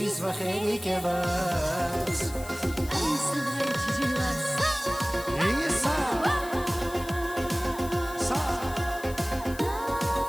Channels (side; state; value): left; noise; hiss, 16 dB below the sound